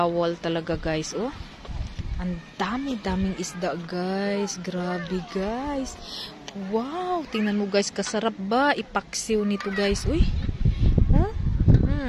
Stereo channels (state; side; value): identical; both; correlation 1.00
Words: talaga guys, oh. Ang dami-daming isda guys. Grabe guys. Wow, tingnan mo guys, kasarap ba ipaksiw nito guys, uy. Oh?